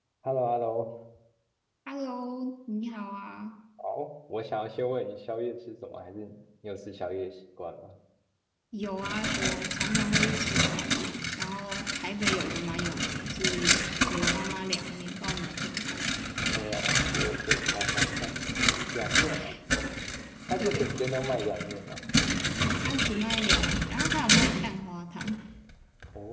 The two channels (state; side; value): identical; both; correlation 1.00